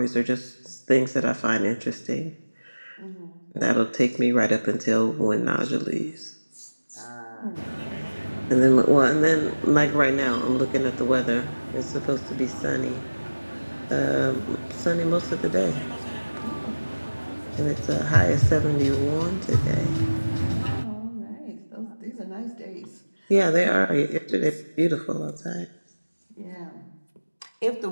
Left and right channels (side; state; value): both; inverted; correlation -1.00